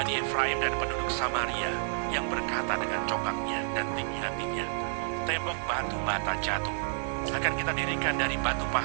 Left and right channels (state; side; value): silent; left; 58 dB below the other